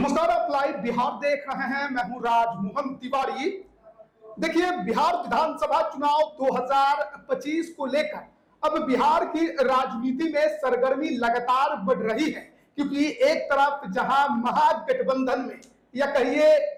आप लाइव बिहार देख रहे हैं। मैं हूं राजमोहन तिवारी। देखिए, बिहार विधानसभा चुनाव 2025 को लेकर अब बिहार की राजनीति में सरगर्मी लगातार बढ़ रही है, क्योंकि एक तरफ जहां महागठबंधन में या कहिए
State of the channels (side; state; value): both; identical; correlation 1.00